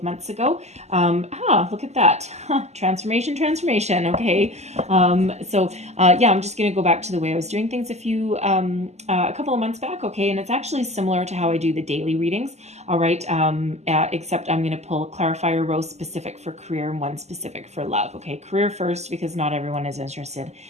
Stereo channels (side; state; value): left; late; 0.33 ms